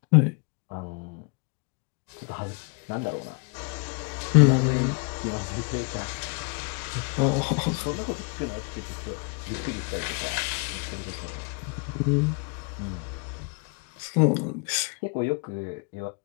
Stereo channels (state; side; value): quieter; right; 34.4 dB